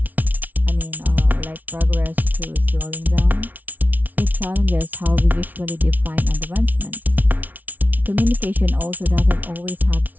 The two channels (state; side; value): late; left; 0.080 ms